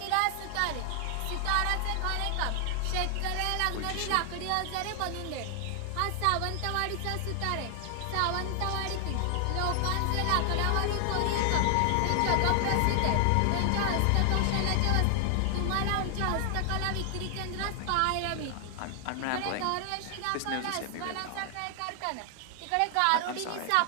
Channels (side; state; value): both; different; correlation 0.00